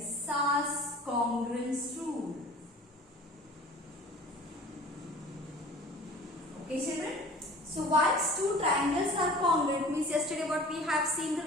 SAS congruence rule. Okay, children. So once two triangles are congruent means yesterday what we have seen the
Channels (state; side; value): normal; both; correlation 0.44